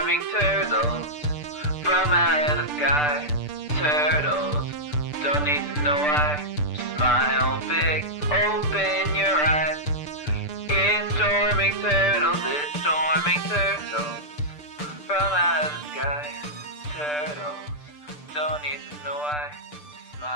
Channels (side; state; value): right; late; 6.8 ms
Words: turtles from out of the sky. Turtles don't need to know why. Smile big, open your eyes. It's storming turtles, it's storming turtles from out of the sky. Turtles don't need to know why.